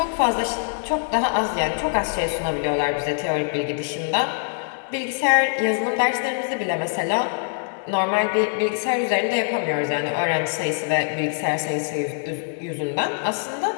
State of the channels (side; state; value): right; silent; 63 dB below the other